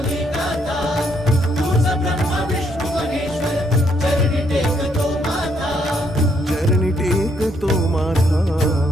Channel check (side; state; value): both; normal; correlation 0.72